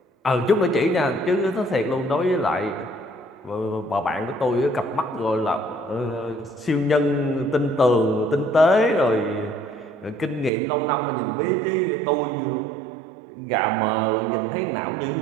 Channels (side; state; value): left; drops out; at 10.5 s